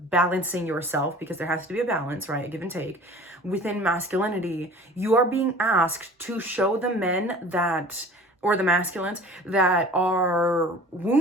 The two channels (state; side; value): normal; both; correlation 0.44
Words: balancing yourself, because there has to be a balance, right, a give and take within masculinity. You are being asked to show the men that, or the masculines that are